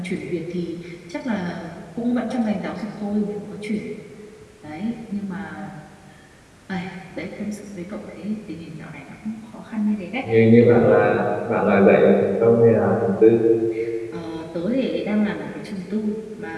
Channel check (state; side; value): identical; both; correlation 1.00